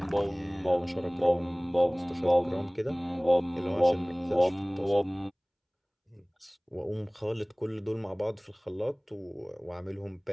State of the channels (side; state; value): both; identical; correlation 1.00